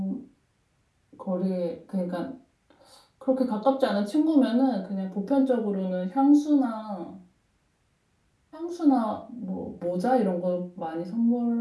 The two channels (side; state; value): both; identical; correlation 1.00